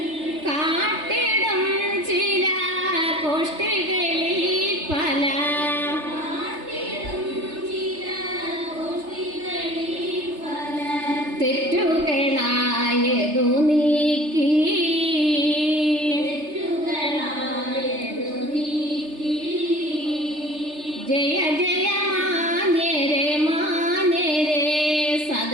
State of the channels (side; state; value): left; late; 3.3 ms